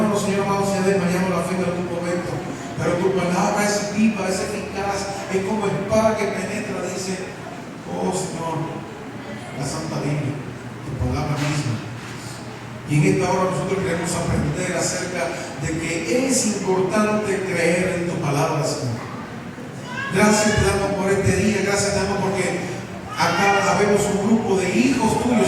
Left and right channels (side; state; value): both; identical; correlation 1.00